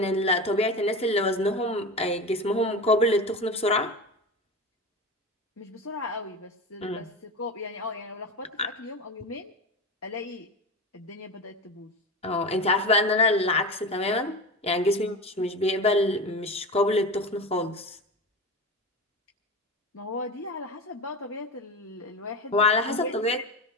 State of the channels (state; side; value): normal; both; correlation 0.26